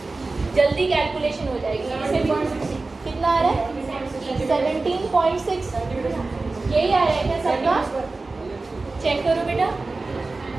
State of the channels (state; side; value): quieter; left; 3.5 dB